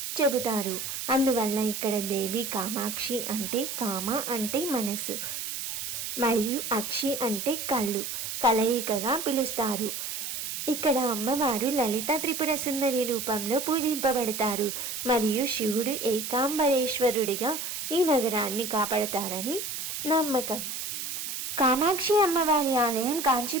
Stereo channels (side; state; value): right; noise; hiss, 5 dB below the sound